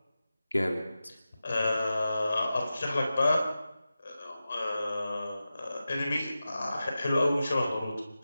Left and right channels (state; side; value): inverted; both; correlation -0.93